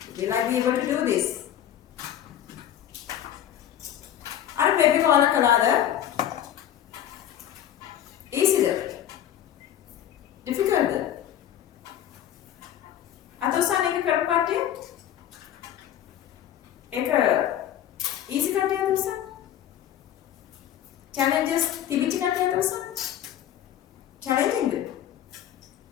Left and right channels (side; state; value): right; quieter; 10.9 dB